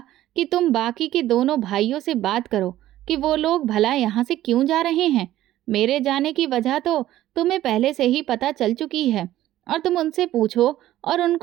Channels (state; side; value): quieter; left; 14.0 dB